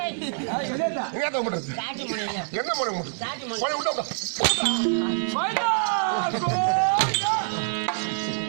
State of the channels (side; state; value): left; silent; digital silence